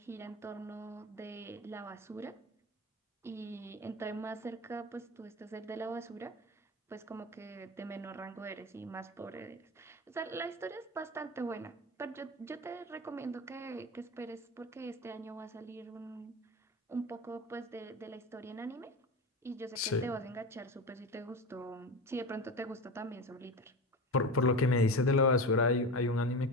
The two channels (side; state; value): both; normal; correlation 0.25